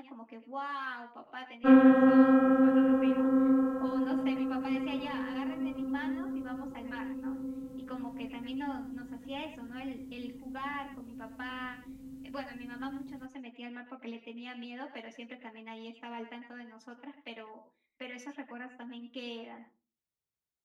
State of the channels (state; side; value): identical; both; correlation 1.00